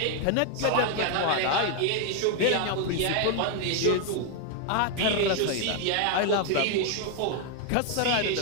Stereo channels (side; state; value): both; different; correlation 0.00